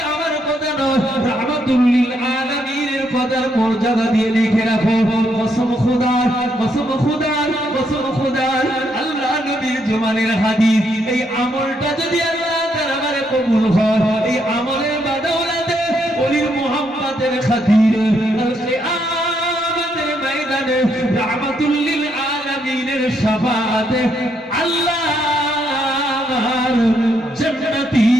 আমার কথা নয়, রাহমাতুল লিল আলামিনের কথার মর্যাদা দিয়ে লিখে রাখো। কসম খোদার, কসম খোদার, কসম খোদার, আল্লাহ নবীর জমানের হাদিস, এই আমলটা যদি আল্লাহ তাআলা আমারে কবুল হয়, এই আমলের বাদৌলাতে ওলির মুহাব্বতের খাতিরে আল কিয়ামতের ময়দানে রাহমাতুল লিল আলামিনের শাফাআতে আল্লাহর জান্নাতি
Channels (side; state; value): both; normal; correlation 0.75